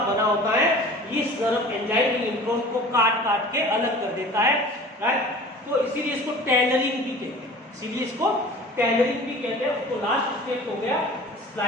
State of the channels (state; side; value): normal; both; correlation 0.42